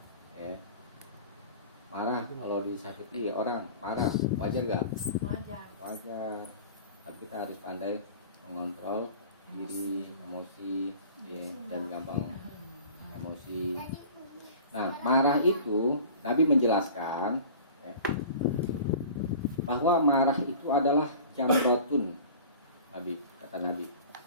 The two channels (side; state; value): both; inverted; correlation -0.42